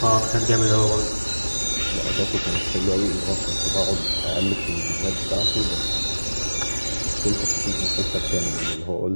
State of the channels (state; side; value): inverted; both; correlation -1.00